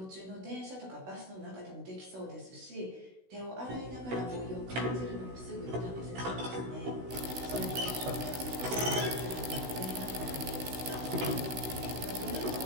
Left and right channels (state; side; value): late; left; 16 ms